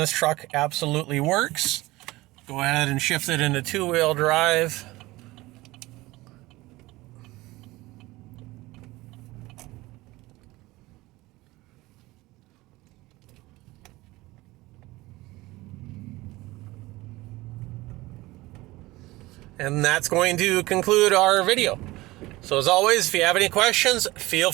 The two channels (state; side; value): quieter; left; 19.7 dB